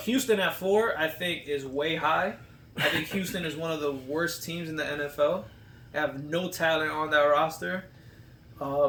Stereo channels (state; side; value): identical; both; correlation 1.00